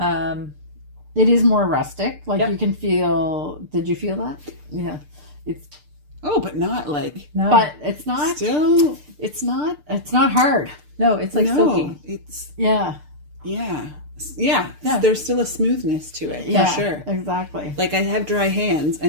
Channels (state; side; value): late; left; 6.7 ms